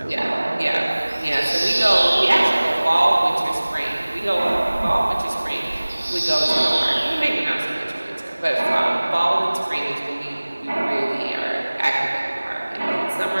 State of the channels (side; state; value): both; inverted; correlation -1.00